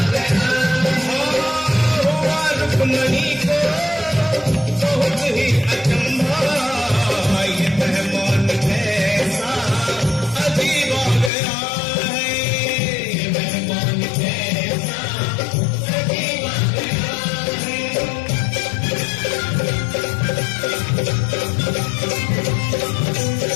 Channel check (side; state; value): right; drops out; at 11.3 s